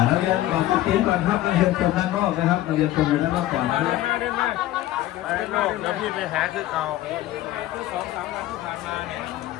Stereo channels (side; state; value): right; quieter; 14.8 dB